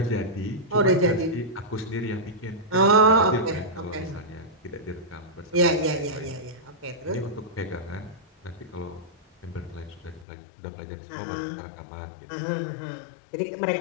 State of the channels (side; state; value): right; drops out; at 10.2 s